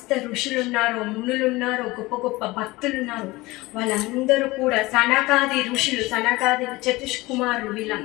ఋషులు ఉన్నారో, మునులు ఉన్నారో, గొప్ప గొప్ప భక్తులు ఉన్నారో, వాళ్ళందరూ కూడా, సనకాది ఋషులు, సనకాది చతుష్కుమారులు,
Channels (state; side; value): quieter; right; 21.0 dB